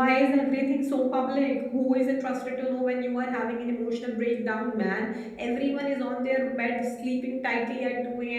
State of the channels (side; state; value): both; identical; correlation 1.00